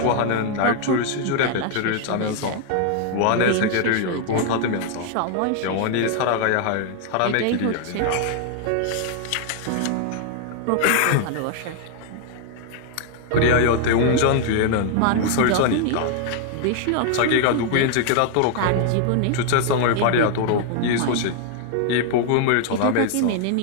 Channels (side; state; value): both; different; correlation 0.00